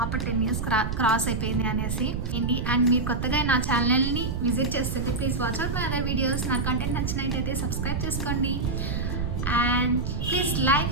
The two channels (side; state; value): right; noise; rumble, 2 dB below the sound